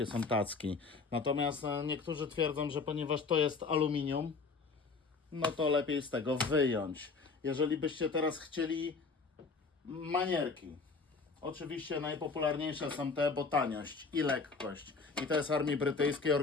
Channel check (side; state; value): right; quieter; 4.5 dB